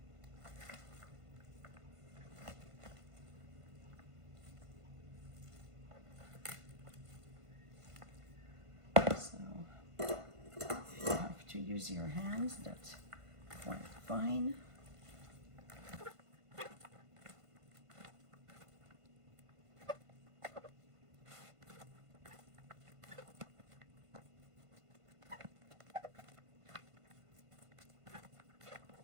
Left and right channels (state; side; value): late; left; 1.5 ms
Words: So you have to use your hands, that's quite fine.